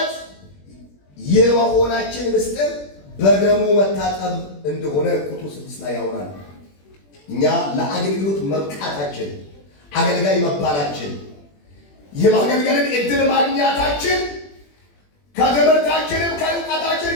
የመሆናችን ምስጢር በደሙ መታጠብ እንደሆነ ቁጥር 6 ላይ ያወራል። እኛ ለአገልግሎት መብቃታችን፣ አገልጋይ መባላችን፣ የማገልገልን እድል ማግኘታችን ከትምህርታችንም ከእውቀታችን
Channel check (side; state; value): right; late; 21 ms